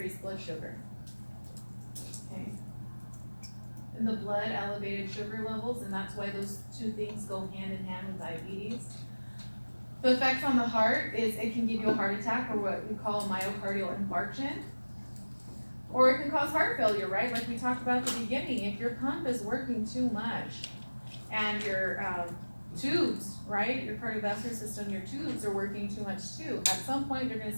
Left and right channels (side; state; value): both; inverted; correlation -1.00